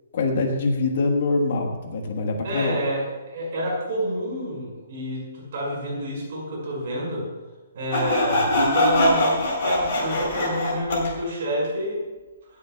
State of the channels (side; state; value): both; inverted; correlation -0.63